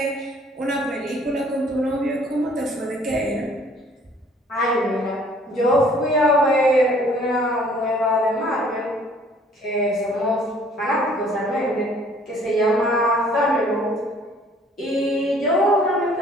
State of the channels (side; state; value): both; normal; correlation 0.57